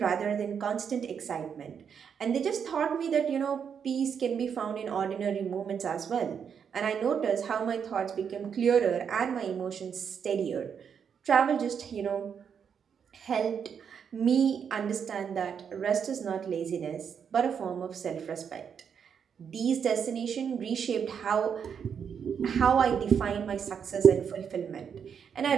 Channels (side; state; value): left; quieter; 7.3 dB